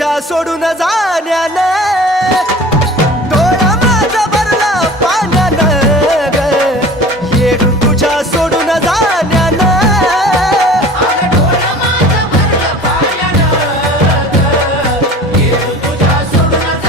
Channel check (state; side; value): normal; both; correlation 0.41